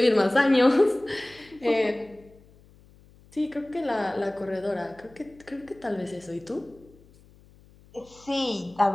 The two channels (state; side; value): noise; left; hum, 27 dB below the sound